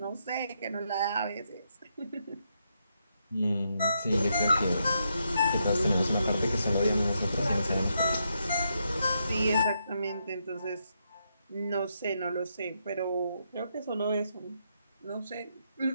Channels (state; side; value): inverted; both; correlation -0.80